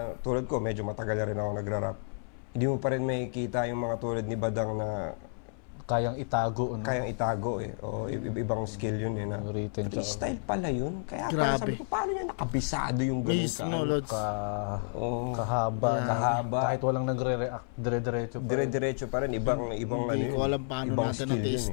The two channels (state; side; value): silent; right; 57 dB below the other